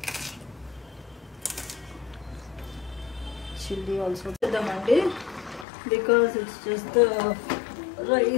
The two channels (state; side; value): drops out; right; at 5.7 s